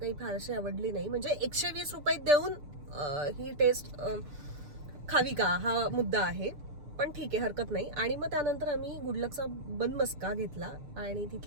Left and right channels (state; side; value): late; left; 6.8 ms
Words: फारशी आवडली नाही. म्हणजे 120 रुपये देऊन ही टेस्ट खावी का हा मुद्दा आहे, पण ठीक आहे हरकत नाही. आणि मग त्यानंतर आम्ही गुडलकचा बनमस्का घेतला आणि